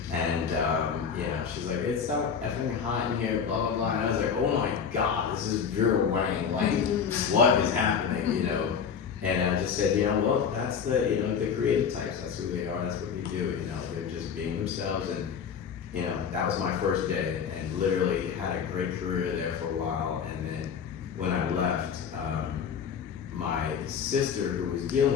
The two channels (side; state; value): right; quieter; 6.9 dB